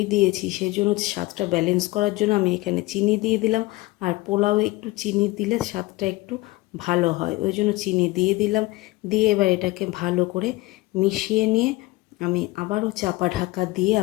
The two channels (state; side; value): quieter; right; 20.4 dB